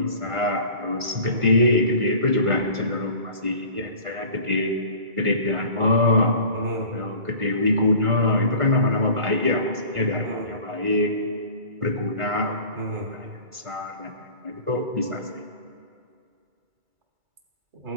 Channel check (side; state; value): left; late; 2.3 ms